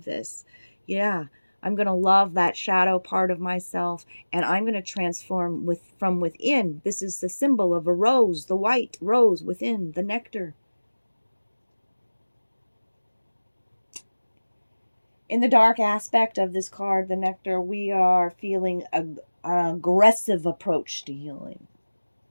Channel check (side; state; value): both; inverted; correlation -1.00